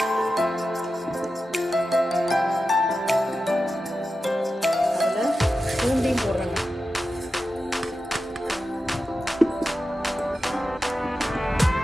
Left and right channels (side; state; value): both; normal; correlation 0.92